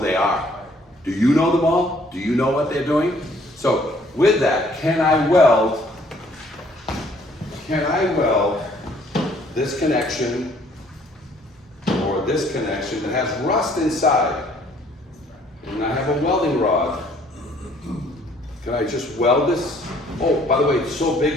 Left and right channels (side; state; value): both; normal; correlation 0.61